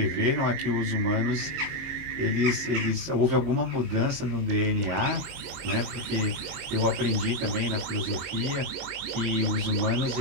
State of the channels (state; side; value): late; left; 22 ms